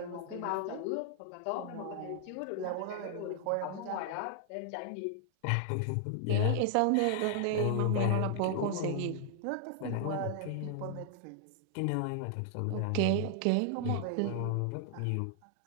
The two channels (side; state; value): both; different; correlation 0.00